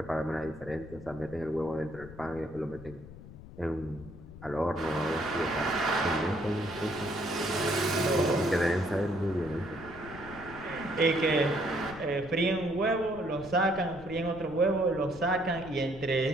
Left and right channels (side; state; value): left; noise; rumble, 16 dB below the sound